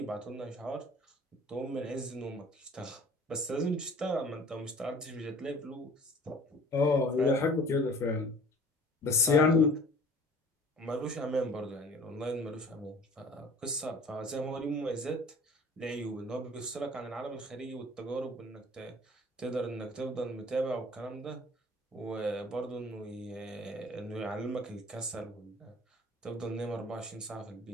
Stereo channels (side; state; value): both; normal; correlation 0.47